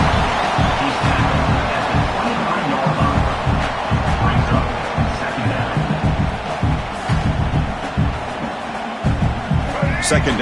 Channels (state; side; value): identical; both; correlation 1.00